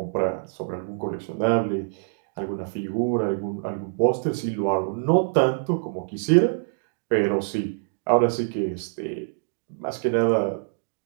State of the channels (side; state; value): left; silent; digital silence